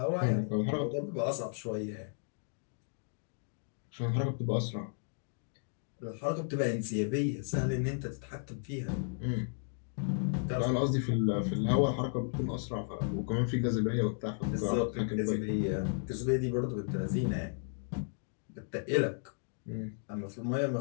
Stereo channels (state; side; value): silent; right; digital silence